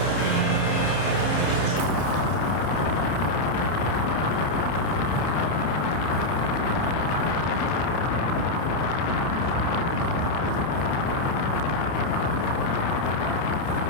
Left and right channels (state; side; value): late; right; 30 ms